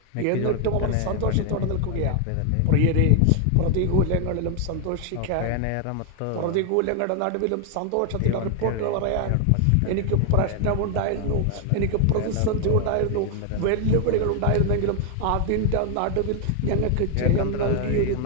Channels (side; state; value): both; different; correlation 0.00